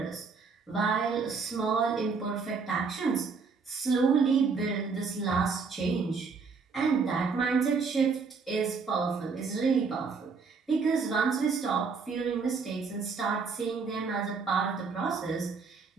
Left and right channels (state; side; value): quieter; left; 5.0 dB